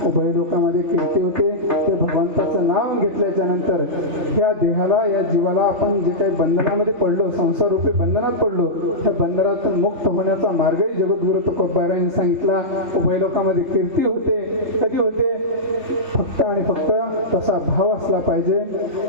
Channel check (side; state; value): left; late; 3.5 ms